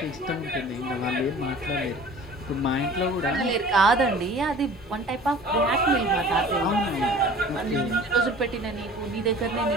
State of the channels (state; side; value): normal; both; correlation 0.45